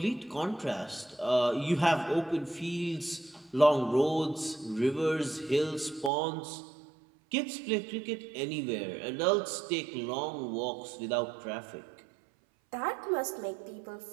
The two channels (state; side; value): drops out; left; at 6.1 s